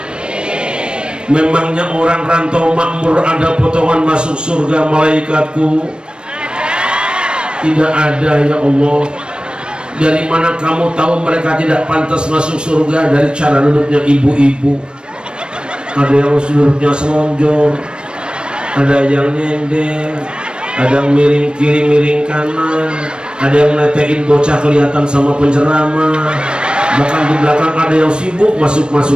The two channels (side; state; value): left; late; 0.050 ms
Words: Memangnya orang rantau makmur ada potongan masuk surga malaikatku? Tidak ada ya Allah. Dari mana kamu tahu mereka tidak pantas masuk surga? Dari cara duduknya ibu-ibu. Ada yang duduknya selonjor, ada yang nyender, ada yang miring kiri miring kanan, ada yang netein bocah kelihatan sama penceramah, bahkan di belakang ada yang sibuk